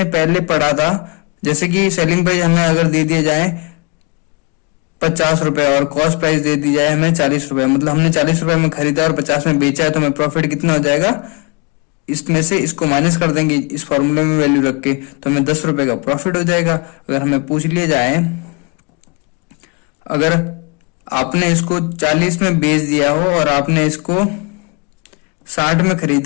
पहले पढ़ा था। जैसे कि सेलिंग प्राइस हमें अगर दे दिया जाए 50 रुपए और कॉस्ट प्राइस दे दी जाए हमें 40 रुपए, मतलब हमने 40 रुपए में खरीदा और 50 में बेचा है, तो हमें प्रॉफिट कितना हो जाएगा, इसमें से इसको माइनस कर देंगे इस फॉर्मूले में वैल्यू रख के, तो हमें 10 रुपए का प्रॉफिट हो जाएगा। अगर हमें पूछ लिया जाए अगर आपने इसको 40 में बेच दिया हो और आपने इसको 60 में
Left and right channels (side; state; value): right; quieter; 31.0 dB